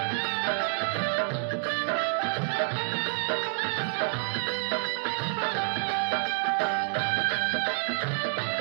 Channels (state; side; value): silent; left; digital silence